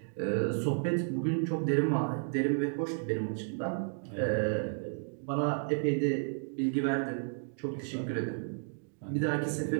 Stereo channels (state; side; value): silent; left; digital silence